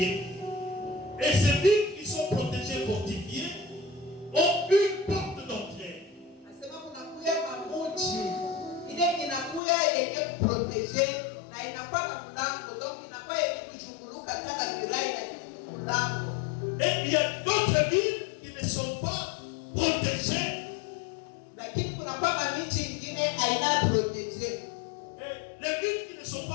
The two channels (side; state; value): right; drops out; at 9.6 s